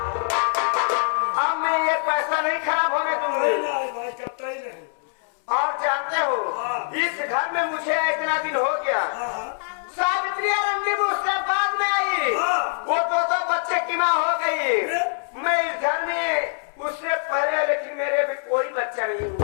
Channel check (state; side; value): silent; right; 63 dB below the other